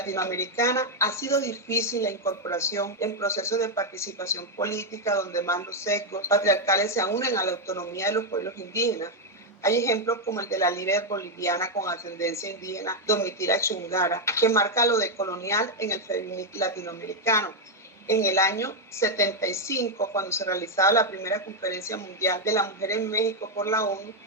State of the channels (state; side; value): normal; both; correlation 0.01